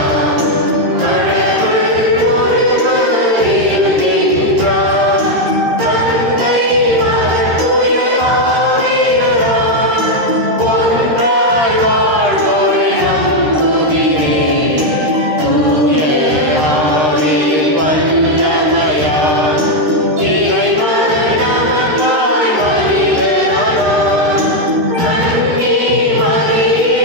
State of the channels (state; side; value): late; left; 13 ms